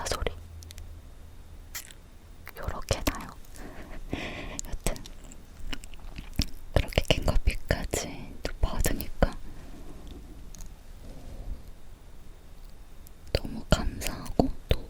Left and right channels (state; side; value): identical; both; correlation 1.00